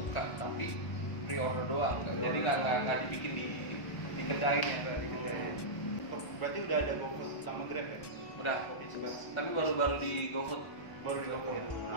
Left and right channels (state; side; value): late; right; 1.2 ms